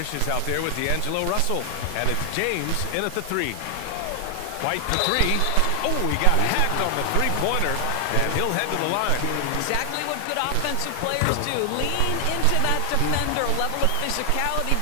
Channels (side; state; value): both; different; correlation 0.00